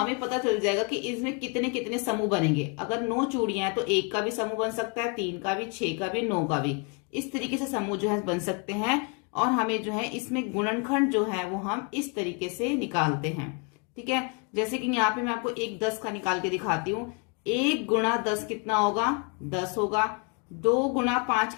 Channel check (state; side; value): quieter; right; 34.9 dB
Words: पता चल जाएगा कि इसमें कितने कितने समूह बनेंगे। अगर 9 चूड़ियां हैं तो 1 का भी समूह बन सकता है, 3 का भी, 6 का भी, 9 का भी। इस तरीके से समूह जो है बन सकते हैं और हमें जो है इसमें गुणनखंड जो है वो हम इस तरीके से निकालते हैं। ठीक है, जैसे कि यहाँ पे मैं आपको 1 10 का निकाल के दिखाती हूँ। 1 गुणा 10 कितना होगा? 10 होगा। 2 गुणा 5